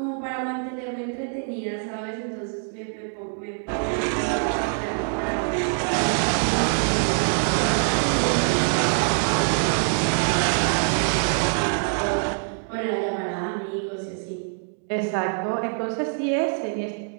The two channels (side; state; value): left; silent; 61 dB below the other